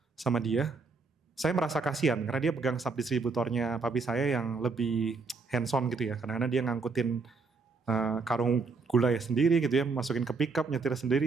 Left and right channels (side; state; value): left; quieter; 4.4 dB